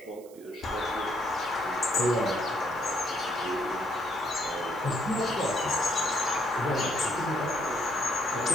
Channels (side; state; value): right; noise; hiss, 24 dB below the sound